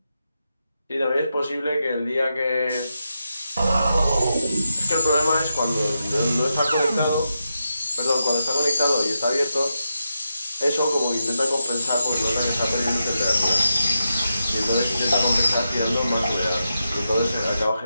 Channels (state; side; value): inverted; both; correlation -0.87